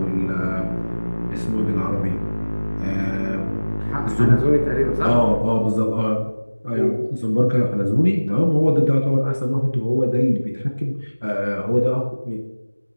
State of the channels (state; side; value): inverted; both; correlation -1.00